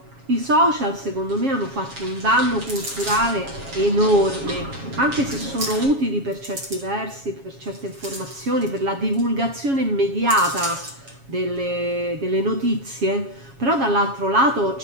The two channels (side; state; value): left; late; 7.3 ms